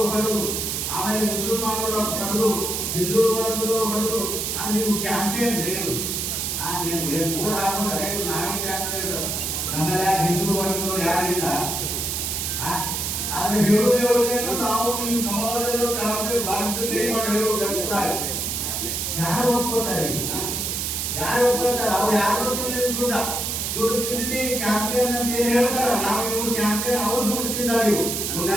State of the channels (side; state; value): right; noise; hiss, 2 dB below the sound